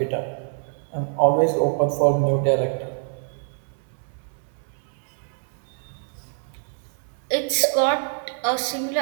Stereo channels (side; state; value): left; silent; 62 dB below the other